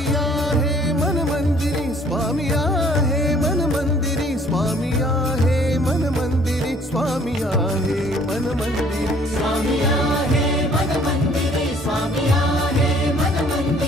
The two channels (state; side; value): normal; both; correlation 0.58